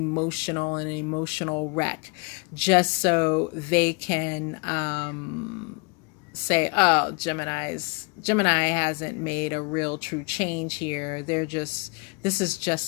and an emotional wreck, just so they can say, oh, Gemini hasn't made a real true change here. This is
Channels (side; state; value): right; quieter; 31.0 dB